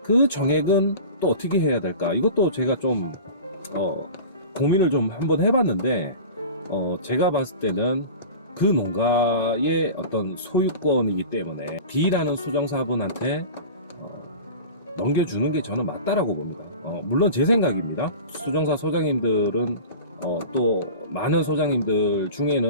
그 정액은 또 어떻게 해야 될까? 이것도 제가 좀 고민을 좀 한번 해봤는데 제가 봤을 때는 그 농가의 어떤 소유권이기 때문에 B라는 수정사분한테 넘겨주는 게 저는 맞다라고 봅니다. 물론 제 생각입니다. 수정사 소장님들은 또 많은 소장님들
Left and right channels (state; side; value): inverted; both; correlation -0.36